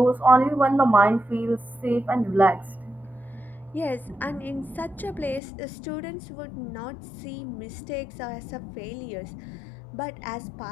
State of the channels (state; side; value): drops out; right; at 5.4 s